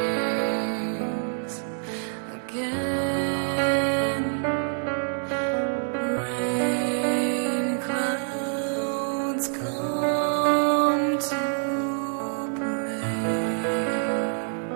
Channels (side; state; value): left; silent; digital silence